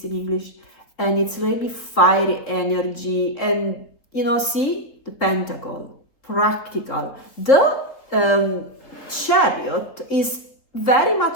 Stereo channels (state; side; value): late; right; 3.9 ms